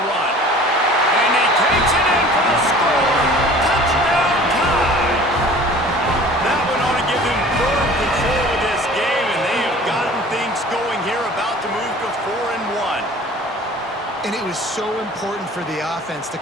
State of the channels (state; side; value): normal; both; correlation 0.46